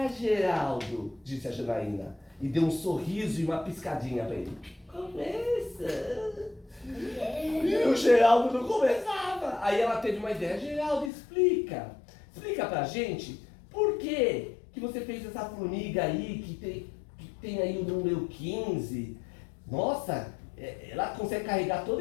Geraldo, disse a Janaína. E deu um sorriso e uma piscadinha para ele. Começa! E o Geraldo não começava. Aí ela teve uma ideia. Geraldo, explica. Explica pra gente por que você fez essa formiga aí que tem aí o número 15. Nossa, ela consegue carregar todo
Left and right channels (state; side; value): drops out; right; at 11.1 s